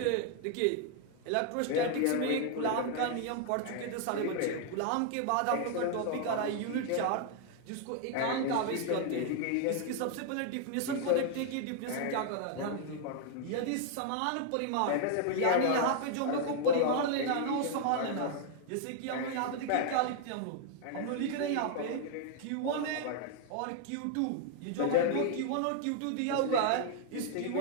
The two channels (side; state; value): both; different; correlation 0.00